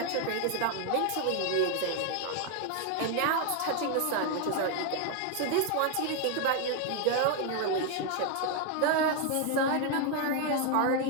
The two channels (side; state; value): both; different; correlation 0.01